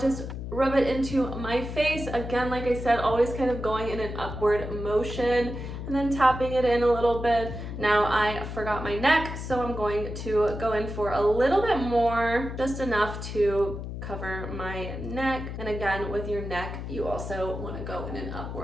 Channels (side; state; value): left; noise; hum, 7 dB below the sound